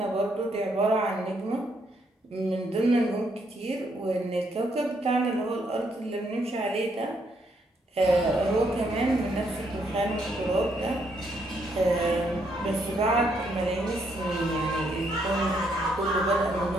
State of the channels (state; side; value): normal; both; correlation 0.73